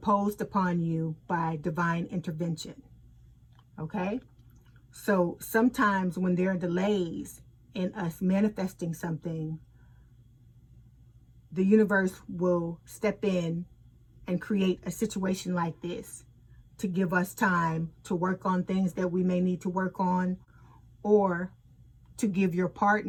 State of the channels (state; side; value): identical; both; correlation 1.00